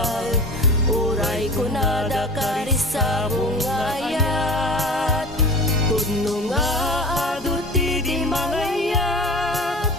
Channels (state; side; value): normal; both; correlation 0.35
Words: uray kunada karisabong nga ayat. Pudno nga aduti di mangayat,